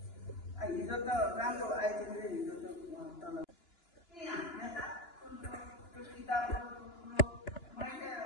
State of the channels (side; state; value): right; late; 2.9 ms